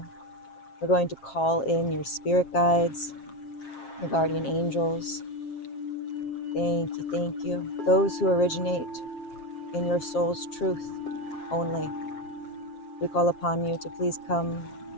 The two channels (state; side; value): late; right; 7.5 ms